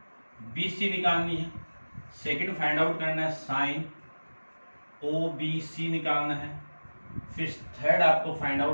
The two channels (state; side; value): inverted; both; correlation -1.00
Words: BC निकालनी है, सेकंड फाइंड आउट करना है साइन OBC निकालना है, फिर थर्ड आपको फाइंड